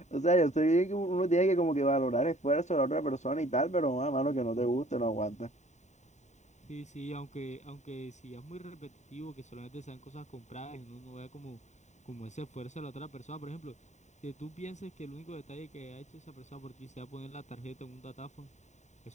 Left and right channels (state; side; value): late; right; 0.34 ms